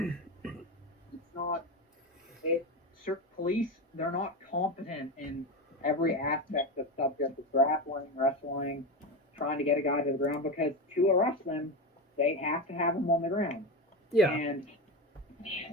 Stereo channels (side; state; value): both; normal; correlation 0.19